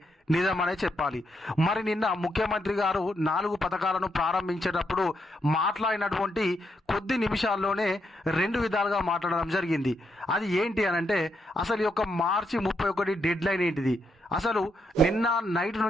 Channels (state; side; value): normal; both; correlation 0.80